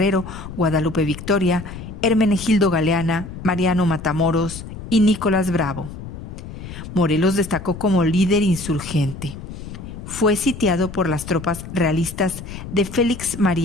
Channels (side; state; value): left; noise; rumble, 11 dB below the sound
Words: Guadalupe Victoria, Hermenegildo Galeana, Mariano Matamoros y Nicolás Bravo. Morelos destacó como líder insurgente. Fue sitiado por las tropas realistas de Félix